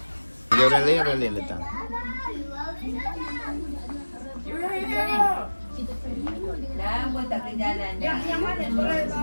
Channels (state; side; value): inverted; both; correlation -1.00